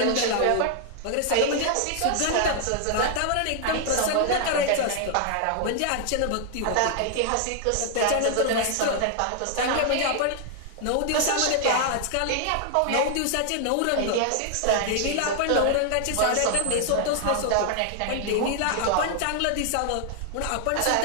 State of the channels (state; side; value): different; both; correlation 0.00